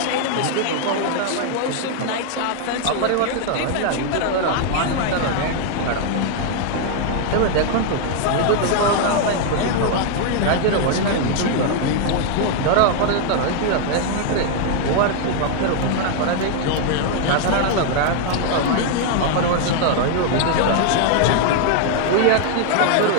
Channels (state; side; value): different; both; correlation 0.00